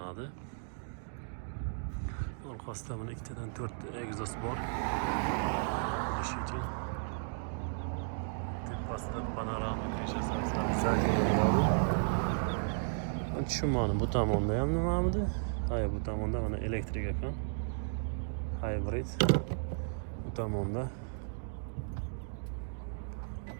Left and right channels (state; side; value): silent; left; digital silence